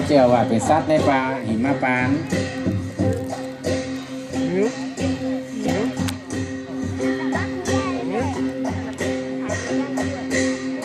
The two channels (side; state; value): both; identical; correlation 1.00